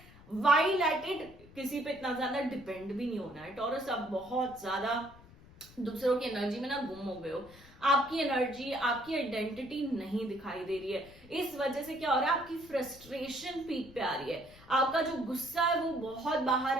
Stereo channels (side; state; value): left; noise; rumble, 22 dB below the sound